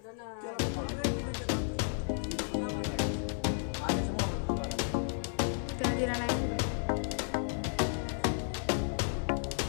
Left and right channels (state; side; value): silent; right; 56 dB below the other